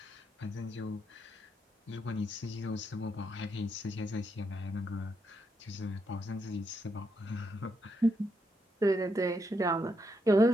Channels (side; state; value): both; normal; correlation 0.80